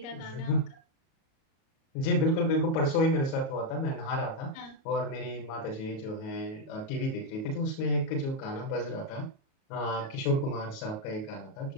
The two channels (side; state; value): right; late; 37 ms